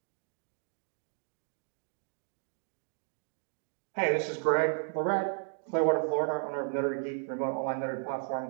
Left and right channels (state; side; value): silent; left; digital silence